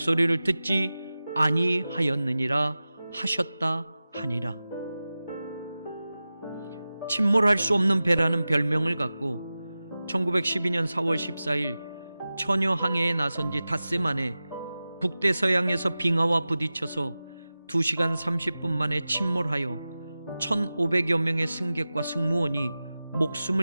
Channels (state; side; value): inverted; both; correlation -0.95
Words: 듣지 아니하였느니라 하셨다 하니라. 침몰할 수 없는 배라는 별명을 갖고 1912년 4월 14일 처녀 항해에 나선 지 닷새 만에 북대서양에서 빙하와 부딪혀서 2시간 30분 만에 침몰하여 1,500여 명의 승객과 승무원이